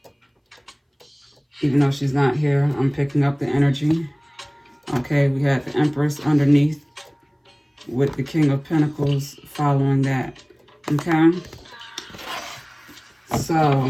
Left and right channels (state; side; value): identical; both; correlation 1.00